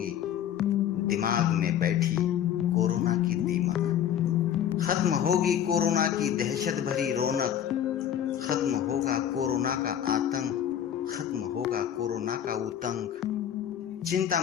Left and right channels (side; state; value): right; quieter; 9.9 dB